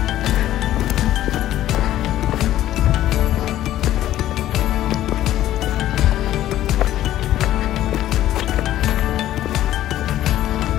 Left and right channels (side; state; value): right; quieter; 13.2 dB